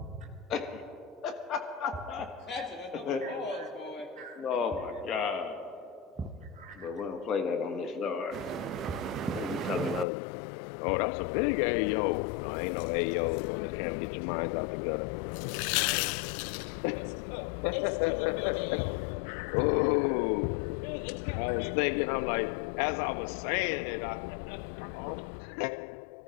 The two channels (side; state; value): right; drops out; at 10.1 s